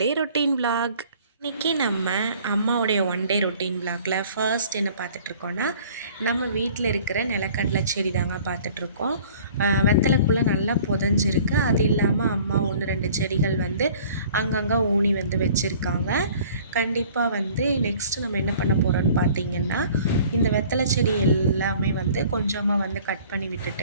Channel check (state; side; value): inverted; both; correlation -0.51